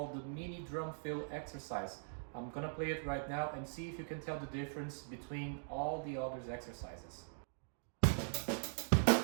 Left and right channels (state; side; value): silent; left; digital silence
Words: the mini drum fill exercise. I'm gonna play it right now and see if you can tell the difference between all the other exercises.